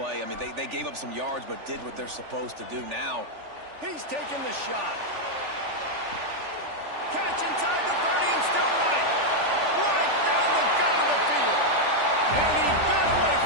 I mean, they gave up some yards but did what they're supposed to do now. He's taking the shot. Catch inside the 30 and still running. Right down the gut of the field. And he got away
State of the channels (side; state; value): left; late; 3.4 ms